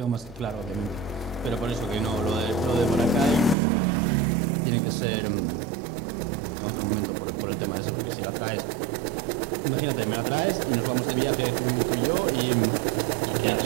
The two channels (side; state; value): left; drops out; at 3.6 s